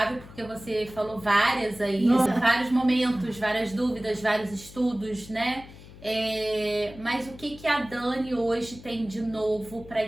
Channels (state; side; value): noise; left; hum, 18 dB below the sound